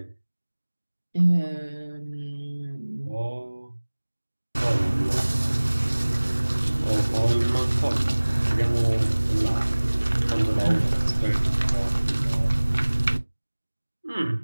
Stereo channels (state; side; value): inverted; both; correlation -1.00